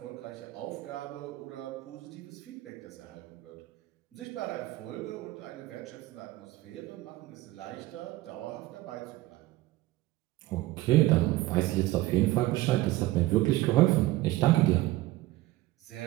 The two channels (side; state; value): left; quieter; 17.3 dB